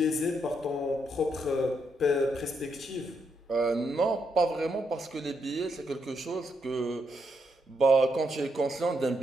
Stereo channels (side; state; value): both; normal; correlation 0.79